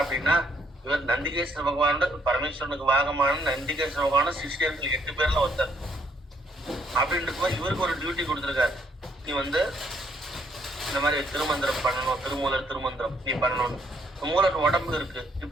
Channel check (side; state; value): both; normal; correlation 0.69